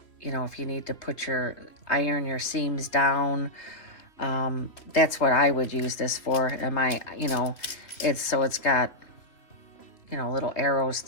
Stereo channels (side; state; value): right; late; 2.9 ms